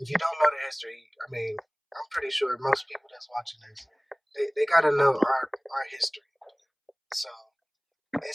if you don't know the history, I mean, I'm pretty sure most people that's watching this, they got to know our history. So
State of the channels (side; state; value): both; identical; correlation 1.00